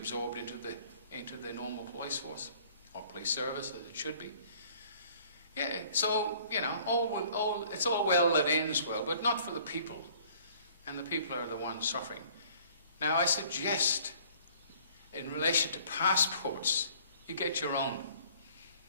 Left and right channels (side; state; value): both; inverted; correlation -0.55